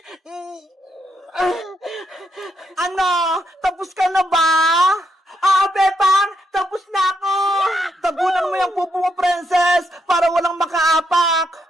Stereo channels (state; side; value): normal; both; correlation 0.79